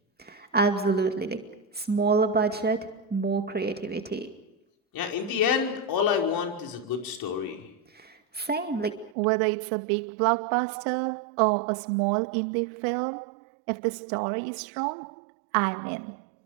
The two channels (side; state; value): left; drops out; at 9.2 s